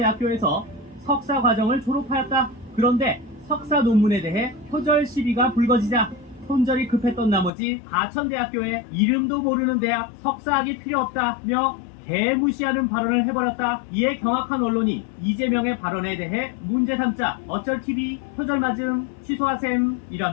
석사 과정을 졸업하였다. 그런데 석사 논문에 대해 표절 시비가 불거지자 손절이 급했던 나머지 가천대학교에 이름도 모르는 대학 석사학이 필요 없다며 개무시하는 발언을 해버렸다. 이에 경악한 언론이 이재명의 발언에 대해 문제 삼자 어쩔 TV 표절 맞음 취소하셈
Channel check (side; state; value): right; drops out; at 7.5 s